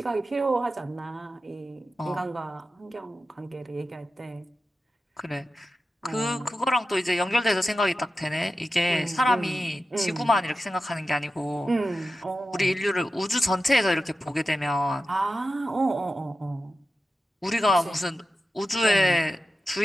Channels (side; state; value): both; normal; correlation 0.92